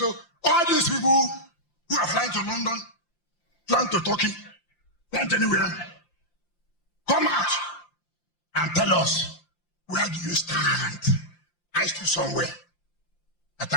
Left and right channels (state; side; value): late; right; 5.8 ms